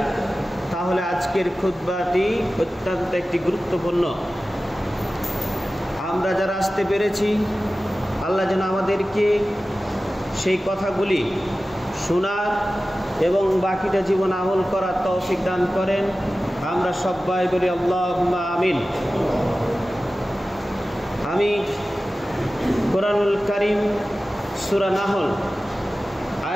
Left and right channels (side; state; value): both; normal; correlation 0.95